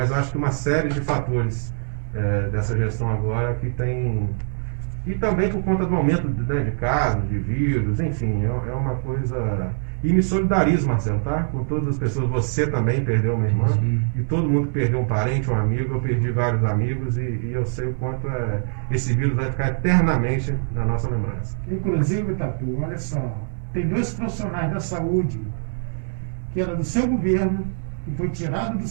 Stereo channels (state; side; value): silent; left; digital silence